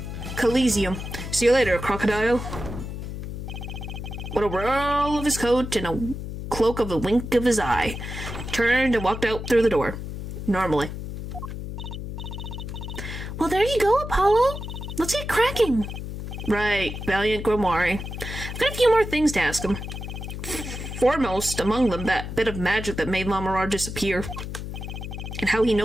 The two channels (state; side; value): noise; left; hum, 7 dB below the sound